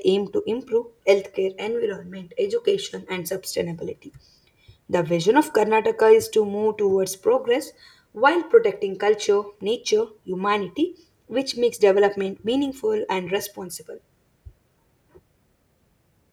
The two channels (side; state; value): both; identical; correlation 1.00